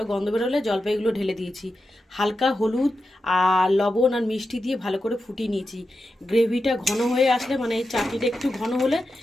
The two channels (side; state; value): both; normal; correlation 0.90